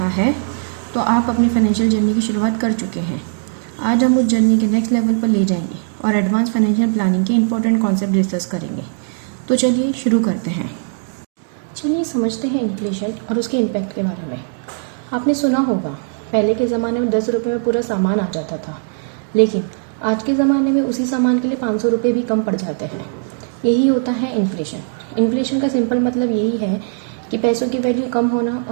है तो आप अपनी फाइनेंशियल जर्नी की शुरुआत कर चुके हैं। आज हम उस जर्नी के नेक्स्ट लेवल पर ले जाएंगे और एडवांस फाइनेंशियल प्लानिंग के इंपॉर्टेंट कॉन्सेप्ट डिस्कस करेंगे। तो चलिए शुरू करते हैं। चलिए समझते हैं इन्फ्लेशन और उसके इम्पैक्ट के बारे में। आपने सुना होगा, पहले के ज़माने में 10 रुपये में पूरा सामान आ जाता था, लेकिन आज के ज़माने में उसी सामान के लिए 500 रुपये भी कम पड़ जाते हैं। यही होता है इन्फ्लेशन। इन्फ्लेशन का सिंपल मतलब यही है कि पैसों की वैल्यू कम होना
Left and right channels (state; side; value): silent; left; digital silence